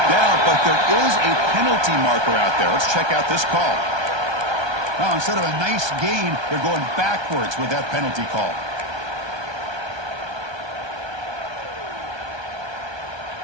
down, but there is a penalty marker out there. Let's check out this call. Now, instead of a nice gain, they're going backwards with that penalty call.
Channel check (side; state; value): left; late; 1.3 ms